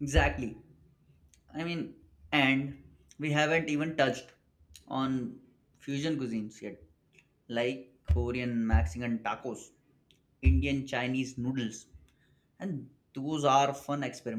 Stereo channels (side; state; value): both; identical; correlation 1.00